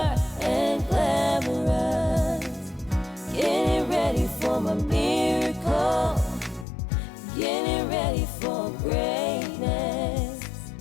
and glamorous. Getting ready for my miracle, getting ready for greatness,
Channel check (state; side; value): drops out; right; at 6.7 s